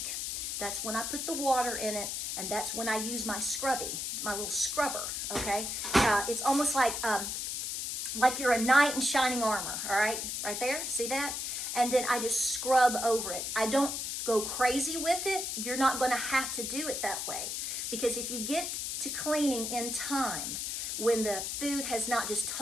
That's when I put the water in it. And that's when I use my scrubby, my little scrubber, okay? It's almost like you're a knight in shining armor, all right? Right there, see that? And then I just scrub over it. I don't go crazy with it. You're not gonna have to do it that way. Because if you get to cleaning in time, when the food has not just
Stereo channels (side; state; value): left; noise; hiss, 3 dB below the sound